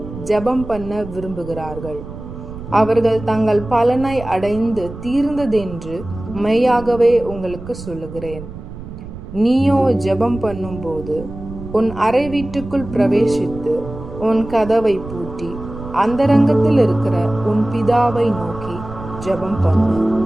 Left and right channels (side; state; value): right; noise; rumble, 12 dB below the sound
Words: ஜெபம் பண்ண விரும்புகிறார்கள். அவர்கள் தங்கள் பலனை அடைந்து தீர்ந்ததென்று மெய்யாகவே உங்களுக்கு சொல்லுகிறேன். நீயோ ஜெபம் பண்ணும் போது உன் அறை வீட்டுக்குள் பிரவேசித்து உன் கதவை பூட்டி அந்தரங்கத்தில் இருக்கிற உன் பிதாவை நோக்கி ஜெபம் பண்ணு.